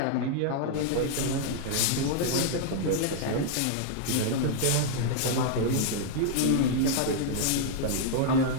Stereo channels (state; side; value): different; both; correlation -0.01